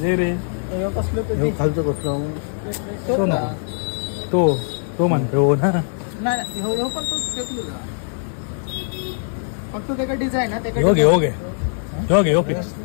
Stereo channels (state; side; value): silent; right; digital silence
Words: जे रे यो कसलं ते खालचं कसलं तो ना तो म्हणतो हो ना नाही हो पण तो फेकलो का फक्त त्याचा डिझाईन आहे हो घे हो घे हो घे हो फिक्स